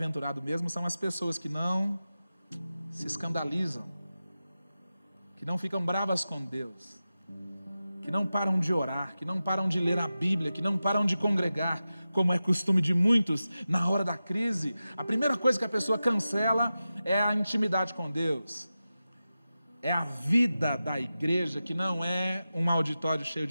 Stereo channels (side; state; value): both; inverted; correlation -0.93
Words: mesmo, são as pessoas que não se escandalizam, que não ficam bravas com Deus, que não param de orar, que não param de ler a Bíblia, que não param de congregar, como é costume de muitos na hora da crise. A primeira coisa que a pessoa cancela é a intimidade com Deus, é a vida da igreja, que não é um auditório cheio